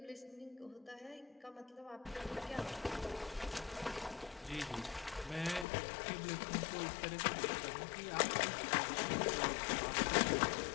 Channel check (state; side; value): drops out; right; at 5.7 s